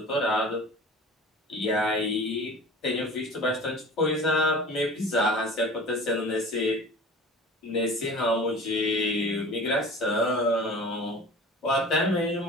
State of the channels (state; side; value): normal; both; correlation 0.39